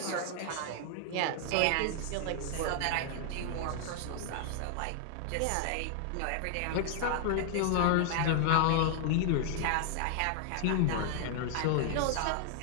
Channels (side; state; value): both; different; correlation 0.00